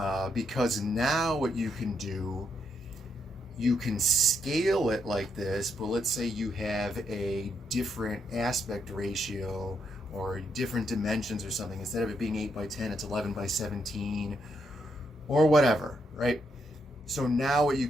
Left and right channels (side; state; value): both; normal; correlation 0.78